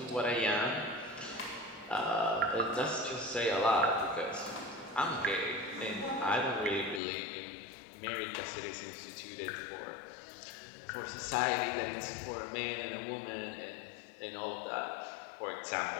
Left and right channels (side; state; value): right; drops out; at 7.0 s